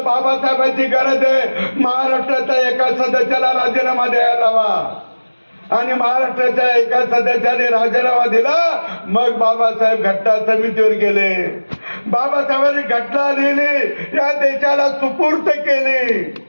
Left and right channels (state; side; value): inverted; both; correlation -1.00